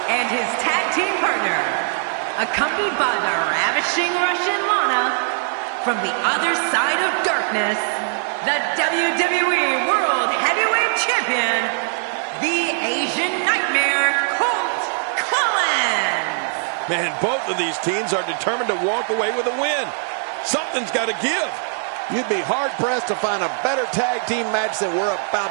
And his tag team partner, accompanied by the ravishing Russian Lana, from the other side of darkness, the WWE World Heavyweight Champion, the Asian Nightmare, Colt Collins. Man, both of these teams are determined to walk away with a win. Something's got to give. You'd be hard-pressed to find a better tag team match than we're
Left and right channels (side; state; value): left; silent; 56 dB below the other